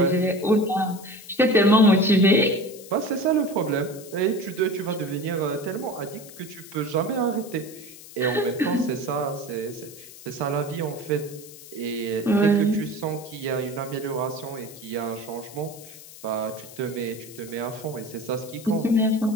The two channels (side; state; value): left; noise; hiss, 17 dB below the sound